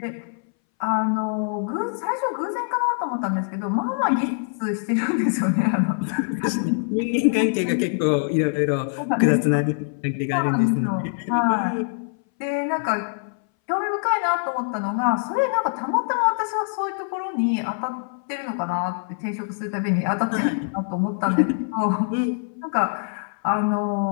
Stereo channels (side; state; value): right; silent; 61 dB below the other